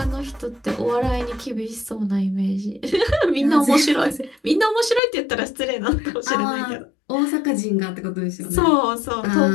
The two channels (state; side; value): drops out; right; at 5.0 s